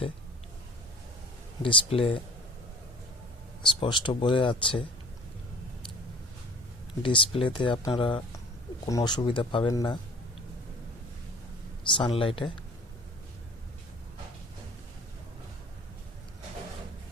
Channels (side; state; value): both; normal; correlation 0.46